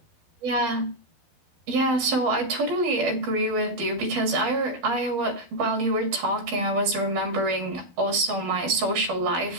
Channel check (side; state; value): left; late; 12 ms